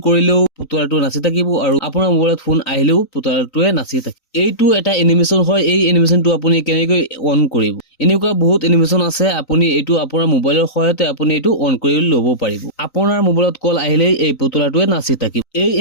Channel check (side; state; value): right; late; 3.9 ms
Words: কৰিলেও পুতলাটো নাচি থাকিব আৰু আপোনাৰ মোবাইলত ফোন আহিলেও পুতলাটোৱে নাচি থাকিব। এইটো এটা এনিমেশন হয়। এই এনিমেশনটো আপুনি কেনেকৈ অন কৰিব? এনেকুৱা বহুত এনিমেশন আছে। আপুনি এইটো আপোনাৰ মোবাইলৰ সহায়তে আপুনি এইটো অন কৰি ল'ব পাৰিব। আপোনাৰ মোবাইলত কল আহিলে এই পুতলাটোৱে নাচি থাকিব। এই